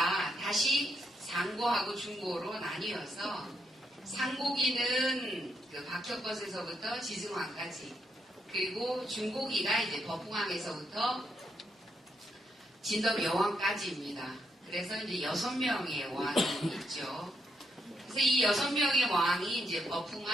다시 상고하고 중고로 나뉘어서 상고기는 그 박혁것에서부터 지승왕까지, 그리고 중고기가 이제 법흥왕에서부터 진덕여왕까지입니다. 그래서 이제 6명의 왕이 있죠. 그래서 이 6명의 왕이 이제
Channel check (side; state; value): both; normal; correlation 0.79